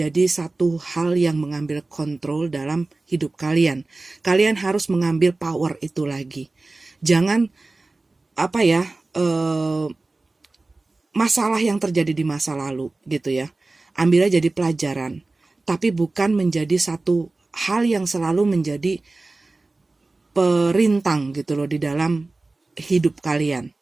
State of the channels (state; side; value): quieter; left; 3.3 dB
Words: satu hal yang mengambil kontrol dalam hidup kalian. Kalian harus mengambil power itu lagi. Jangan masalah yang terjadi di masa lalu gitu ya, ambilnya jadi pelajaran, tapi bukan menjadi satu hal yang selalu menjadi perintang gitu loh di dalam hidup kalian.